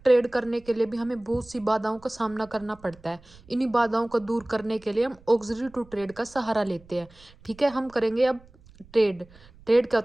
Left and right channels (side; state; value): right; noise; rumble, 25 dB below the sound